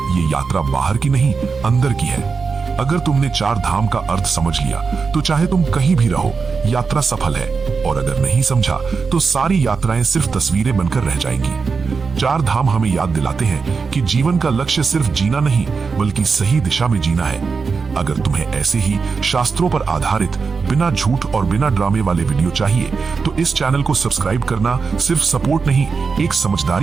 ये यात्रा बाहर की नहीं, अंदर की है। अगर तुमने 4 धाम का अर्थ समझ लिया तो चाहे तुम कहीं भी रहो, यात्रा सफल है। और अगर नहीं समझा तो सारी यात्राएं सिर्फ तस्वीरें बनकर रह जाएंगी। 4 धाम हमें याद दिलाते हैं कि जीवन का लक्ष्य सिर्फ जीना नहीं, बल्कि सही दिशा में जीना है। अगर तुम्हें ऐसे ही शास्त्रों पर आधारित, बिना झूठ और बिना ड्रामे वाले वीडियो चाहिए तो इस चैनल को सब्सक्राइब करना सिर्फ सपोर्ट नहीं, एक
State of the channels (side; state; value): left; quieter; 5.0 dB